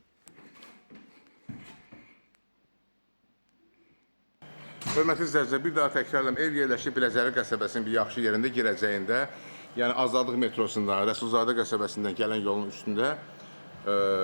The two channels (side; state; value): both; inverted; correlation -1.00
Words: Hörmətli izləyicilər, bir daha təkrarlayım, ev yerləşib Biləcəri qəsəbəsinin bir yaxşı yerində, girəcəyində, yəni Azadlıq metrosundan, Rəsulzadə qəsəbəsindən gələn yolun üstündə,